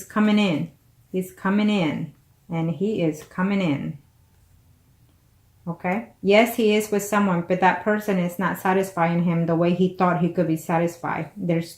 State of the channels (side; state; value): both; identical; correlation 1.00